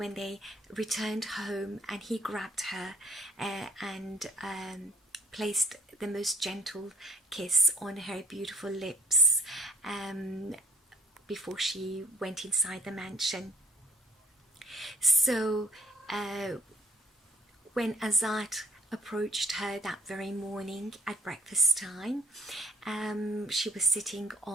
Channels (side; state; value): both; normal; correlation 0.59